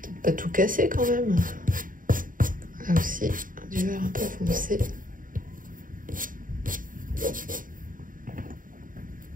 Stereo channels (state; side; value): late; left; 0.39 ms